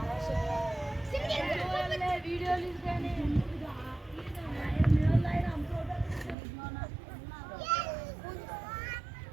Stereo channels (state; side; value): drops out; left; at 6.4 s